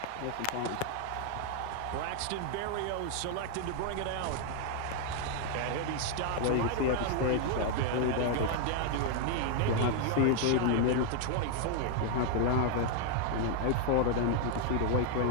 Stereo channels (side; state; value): both; different; correlation 0.00